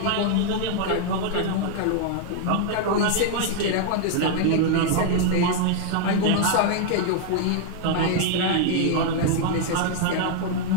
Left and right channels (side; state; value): both; different; correlation 0.00